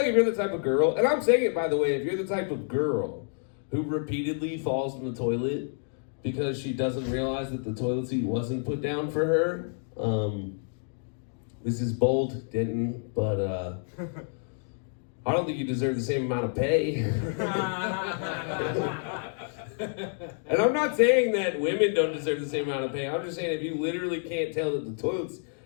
if you're the type of girl, and I'm saying it by the way, if you're the type of girl who repeatedly falls in the toilet because she doesn't realize that the toilet seat wasn't put down for her, this is bold, Denton, but I don't think you deserve the same amount of pay. And I'm not saying that women don't deserve the same amount of pay. I'm just saying if you literally can't tell that the toilet's...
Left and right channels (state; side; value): silent; right; 59 dB below the other